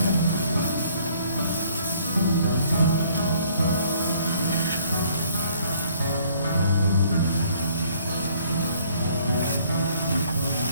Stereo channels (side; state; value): both; inverted; correlation -0.61